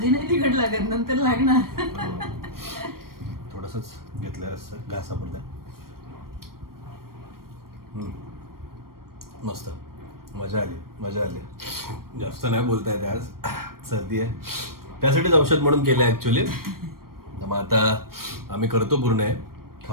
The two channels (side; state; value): left; late; 0.93 ms